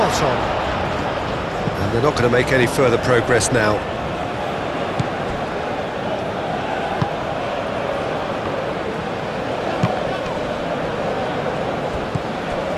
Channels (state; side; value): identical; both; correlation 1.00